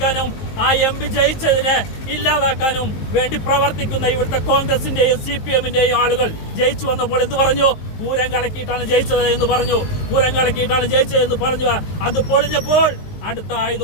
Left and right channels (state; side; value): late; right; 19 ms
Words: ആ MP ജയിച്ചതിനെ ഇല്ലാതാക്കാനും വേണ്ടി പ്രവർത്തിക്കുന്ന ഇവിടുത്തെ കോൺഗ്രസിന്റെയും CPM-ന്റെയും ആളുകൾ ജയിച്ചു വന്നപ്പോൾ എന്ത് പറഞ്ഞു? പൂരം കലക്കിയിട്ടാണ് ജയിച്ചത് എന്ന് പറഞ്ഞു. പൂരം കലക്കിയിട്ടാണ് ജയിച്ചതെന്ന് പറഞ്ഞു. അത് പൊളിഞ്ഞപ്പോൾ അടുത്ത